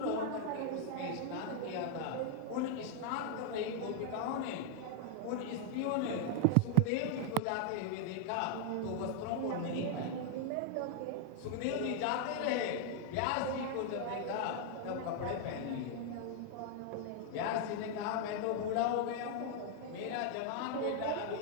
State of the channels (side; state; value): both; different; correlation 0.00